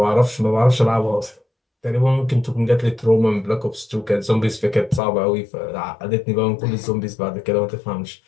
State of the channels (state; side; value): drops out; right; at 5.0 s